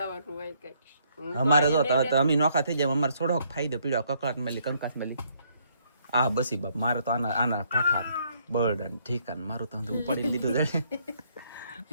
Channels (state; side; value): inverted; both; correlation -0.69